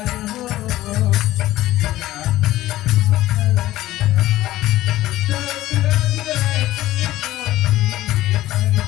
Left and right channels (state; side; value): quieter; right; 15.5 dB